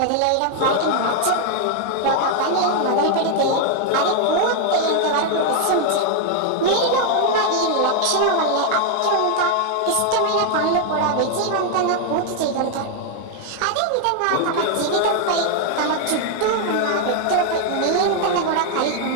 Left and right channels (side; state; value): both; different; correlation 0.00